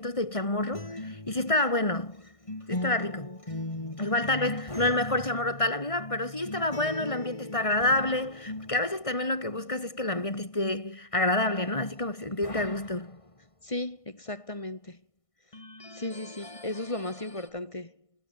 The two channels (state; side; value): late; right; 1.6 ms